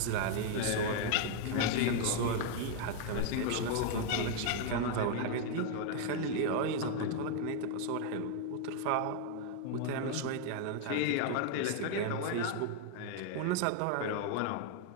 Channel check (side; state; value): both; different; correlation 0.00